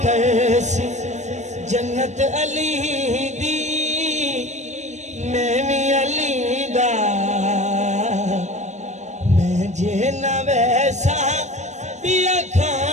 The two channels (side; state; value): left; late; 0.34 ms